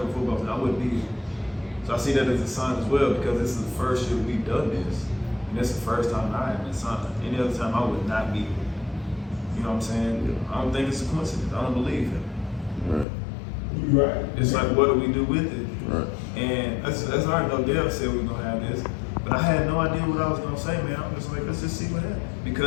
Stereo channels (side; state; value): right; drops out; at 13.1 s